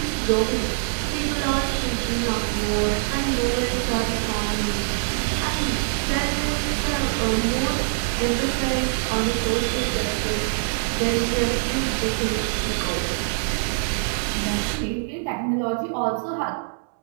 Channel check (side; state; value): left; silent; 61 dB below the other